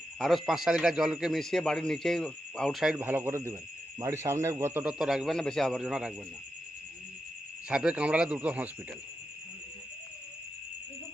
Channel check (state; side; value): normal; both; correlation 0.88